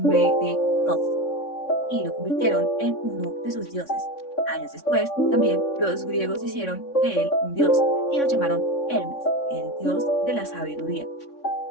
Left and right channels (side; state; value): right; late; 3.6 ms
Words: de Thoth y lo convirtieron en uno de sus dioses. Años después, también los griegos hicieron de él un dios y lo llamaron Hermes, el dios de la sabiduría.